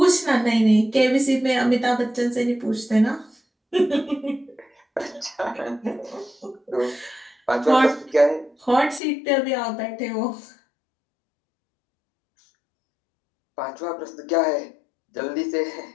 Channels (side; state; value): right; drops out; at 9.0 s